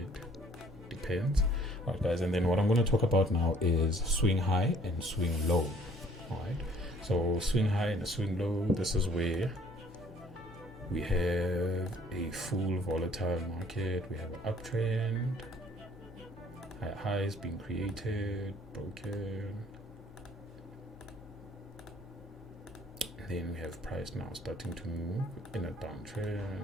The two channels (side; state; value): both; normal; correlation 0.58